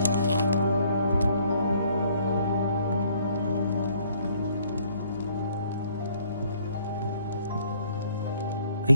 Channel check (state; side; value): inverted; both; correlation -0.62